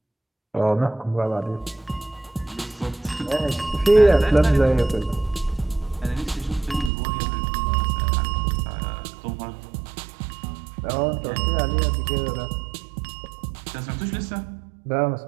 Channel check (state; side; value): drops out; left; at 6.9 s